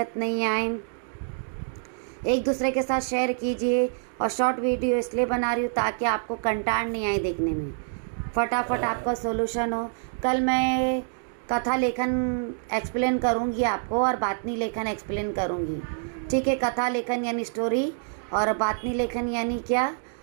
नहीं आए। एक दूसरे के साथ शेयर कीजिए, और शॉर्ट वीडियो इसलिए बना रही हूँ ताकि आपको कंटाळ नहीं आए देखने में, फटाफट आपका सोल्यूशन हो। कल मैं कथा लेखन एक्सप्लेन करूँगी आपको, और बातनी लेखन एक्सप्लेन करूँगी। ठीक है, कथा लेखन यानी स्टोरी, और बातनी लेखन यानी क्या,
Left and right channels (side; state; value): left; silent; 61 dB below the other